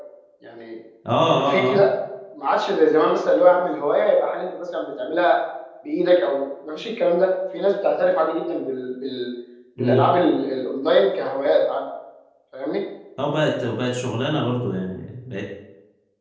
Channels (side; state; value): both; identical; correlation 1.00